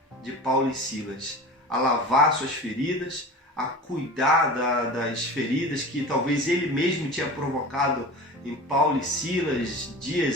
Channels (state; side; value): normal; both; correlation 0.34